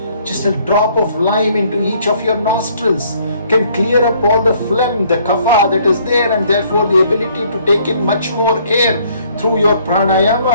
Just a drop of lime into each of your nostrils can clear up all the phlegm, the kapha that is there, and therefore the ability to take in much more air through your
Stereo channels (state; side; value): inverted; both; correlation -0.62